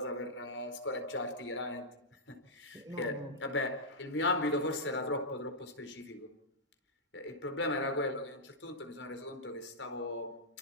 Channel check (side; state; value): both; normal; correlation -0.10